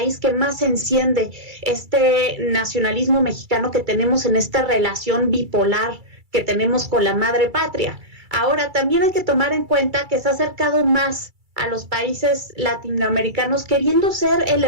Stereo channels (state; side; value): late; left; 2.3 ms